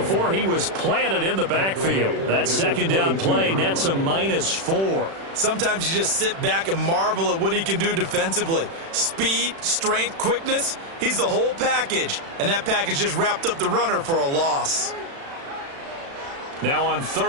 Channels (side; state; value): left; late; 36 ms